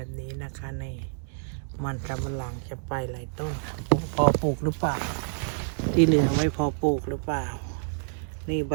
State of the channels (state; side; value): silent; left; digital silence